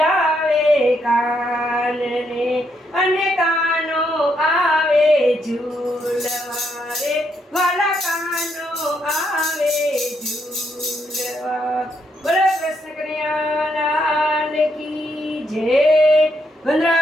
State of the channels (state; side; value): normal; both; correlation 0.77